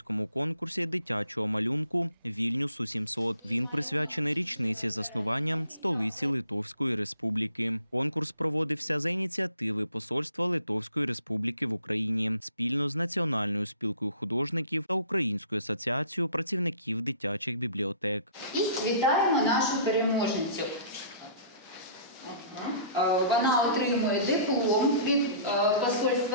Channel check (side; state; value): both; inverted; correlation -0.51